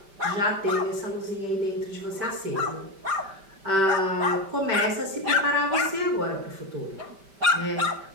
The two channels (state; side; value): late; left; 5.1 ms